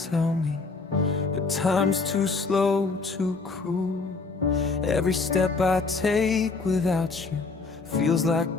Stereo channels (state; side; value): quieter; right; 4.2 dB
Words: tell me, but time's too slow, too cruel. Every step I take without you feels like